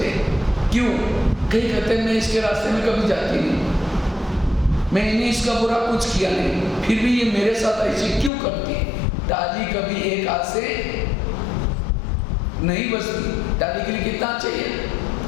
हैं। क्यों? कई कहते हैं मैं इसके रास्ते में कभी जाती नहीं, मैंने इसका बुरा कुछ किया नहीं, फिर भी ये मेरे साथ ऐसे क्यों करती है? ताली कभी एक हाथ से नहीं बचती। ताली के लिए कितना चाहिए?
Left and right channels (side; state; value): right; drops out; at 8.3 s